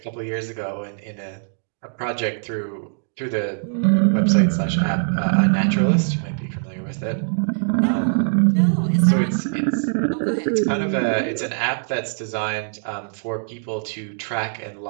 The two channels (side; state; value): left; silent; digital silence